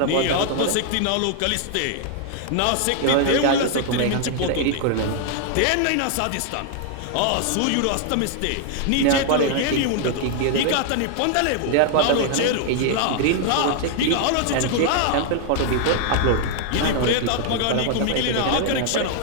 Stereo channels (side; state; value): both; different; correlation 0.00